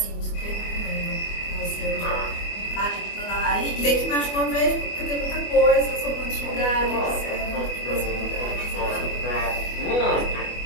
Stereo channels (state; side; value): late; right; 24 ms